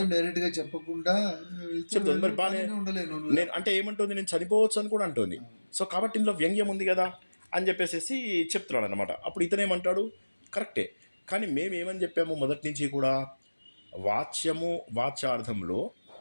డైరెక్ట్ గా చెప్పకుండా చెప్తుంది, మరి బాగా నేను అంటే ఏమంటుంది, నేను చనిపోవచ్చు అని కూడా అంటుంది. సో కాబట్టి ఇందులో వ్యంగ్యం ఉంది కదా అని చెప్పేసి చెప్తున్నాడు అనమాట. అప్పుడు ఇతనేమంటాడు, కరెక్టే, కానీ మేమేమని చెప్పాము మొదటి నుంచి కూడా, వాచ్యార్థంలో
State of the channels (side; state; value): both; inverted; correlation -1.00